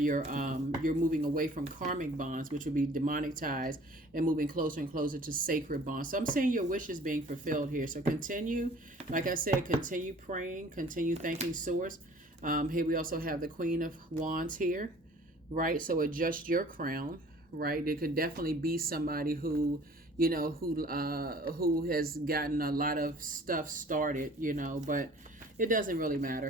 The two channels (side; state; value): both; normal; correlation 0.50